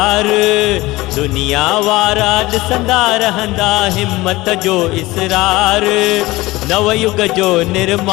दुनिया वारा ॾिसंदा रहंदा हिम्मत जो इसरार। नवयुग जो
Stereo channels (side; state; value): right; quieter; 19.8 dB